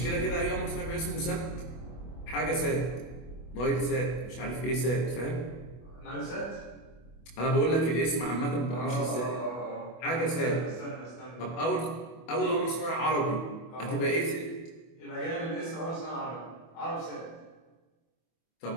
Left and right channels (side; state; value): right; late; 24 ms